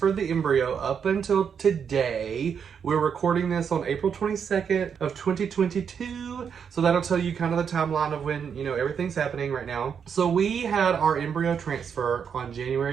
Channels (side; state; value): left; quieter; 7.1 dB